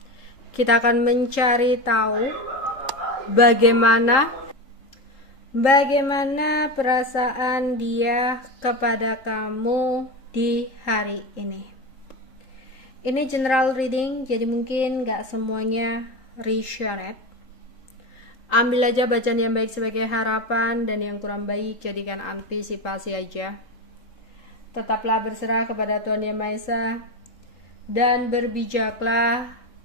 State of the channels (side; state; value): right; late; 3.8 ms